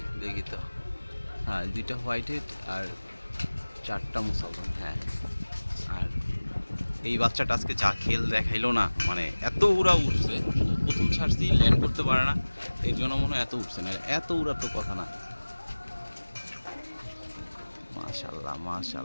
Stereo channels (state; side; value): inverted; both; correlation -1.00